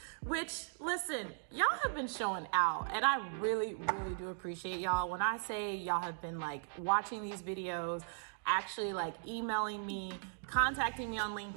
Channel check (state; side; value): silent; left; digital silence